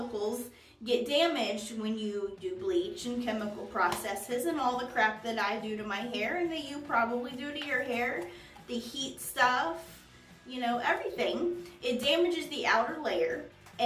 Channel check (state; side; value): identical; both; correlation 1.00